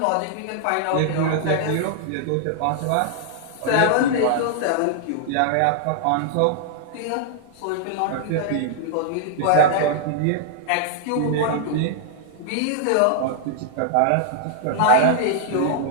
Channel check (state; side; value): different; both; correlation -0.01